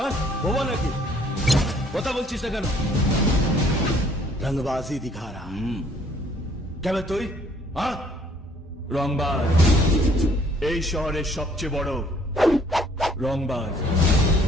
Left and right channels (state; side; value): normal; both; correlation 0.61